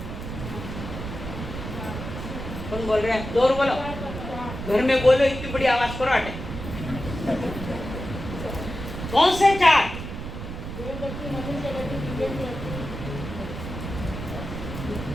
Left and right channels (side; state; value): right; noise; rumble, 7 dB below the sound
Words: कौन बोल रहे हैं? जोर बोलो, घर में बोलो, इतनी बड़ी आवाज करो। अटे कौन से 4?